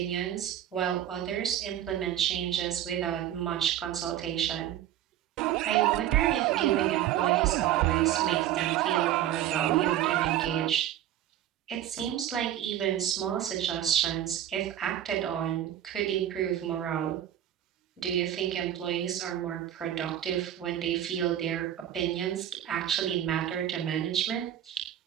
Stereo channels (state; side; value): quieter; left; 11.6 dB